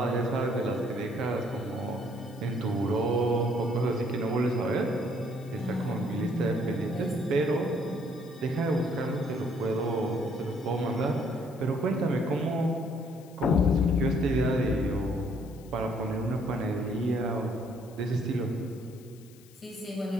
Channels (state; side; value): noise; left; hiss, 25 dB below the sound